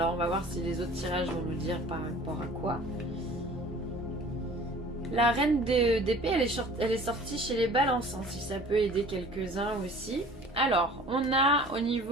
on va voir si les autres tirages vont nous dire par rapport à quoi. La reine d'épée, elle est sortie chez les balances, si ça peut aider quelques-uns aussi. Alors, on a au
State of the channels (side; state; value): both; normal; correlation 0.46